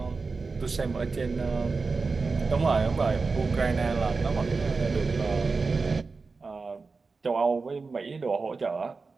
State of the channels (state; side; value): quieter; left; 4.3 dB